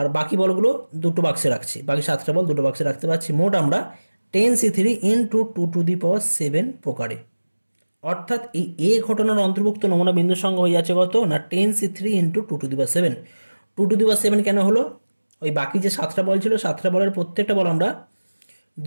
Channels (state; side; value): inverted; both; correlation -1.00